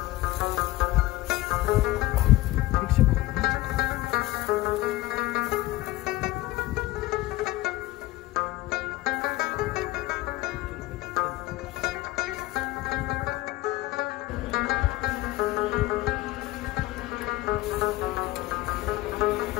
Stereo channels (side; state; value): right; quieter; 17.8 dB